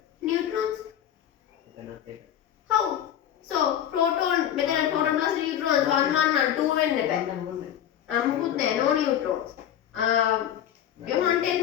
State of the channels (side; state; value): right; quieter; 10.5 dB